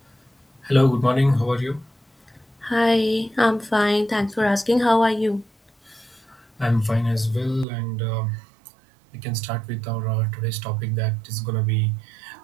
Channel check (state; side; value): drops out; left; at 7.7 s